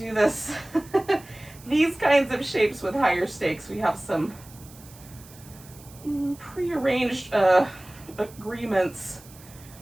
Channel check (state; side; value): noise; right; hiss, 22 dB below the sound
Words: this, these kinds of shapes with higher stakes, we have some prearranged agreements